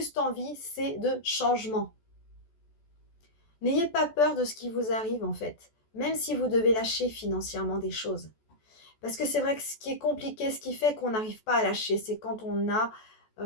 envie, c'est de changement. N'ayez pas peur de ce qui vous arrive en fait, même si vous devez lâcher financièrement des choses. Parce que c'est vrai que ce qui est compliqué, ce qui fait qu'on n'arrive pas à lâcher, c'est quand on a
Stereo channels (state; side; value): late; right; 14 ms